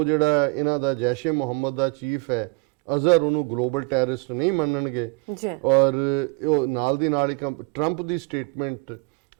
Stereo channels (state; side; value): quieter; left; 31.1 dB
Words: ਜਿਹੜਾ ਇਹਨਾਂ ਦਾ ਜੈਸ਼ ਏ ਮੁਹੰਮਦ ਦਾ ਚੀਫ ਹੈ ਅਜ਼ਹਰ ਉਹਨੂੰ ਗਲੋਬਲ ਟੈਰਰਿਸਟ ਨਹੀਂ ਮੰਨਣਗੇ। ਔਰ ਉਹ ਨਾਲ ਦੀ ਨਾਲ ਇੱਕ ਟਰੰਪ ਦੀ ਸਟੇਟਮੈਂਟ